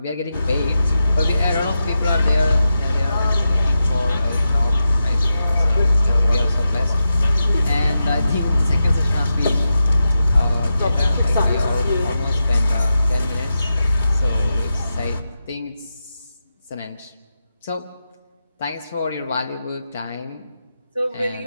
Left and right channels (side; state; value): both; inverted; correlation -0.89